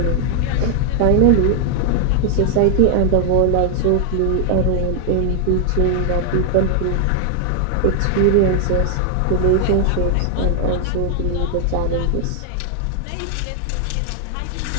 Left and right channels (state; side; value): different; both; correlation 0.00